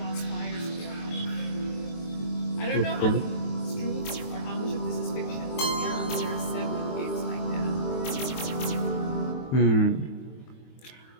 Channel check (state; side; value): late; right; 23 ms